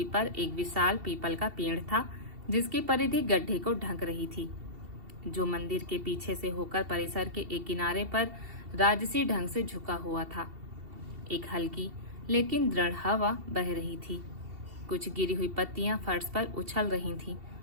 पर एक विशाल पीपल का पेड़ था, जिसकी परिधि गड्ढे को ढक रही थी, जो मंदिर के पीछे से होकर परिसर के एक किनारे पर राजसी ढंग से झुका हुआ था। एक हल्की लेकिन दृढ़ हवा बह रही थी। कुछ गिरी हुई पत्तियां फर्श पर उछल रही थीं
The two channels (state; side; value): late; left; 2.7 ms